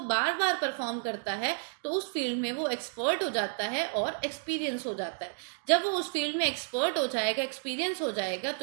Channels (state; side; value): silent; left; 57 dB below the other